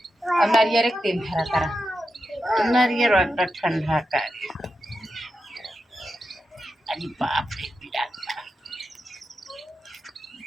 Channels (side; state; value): both; normal; correlation 0.89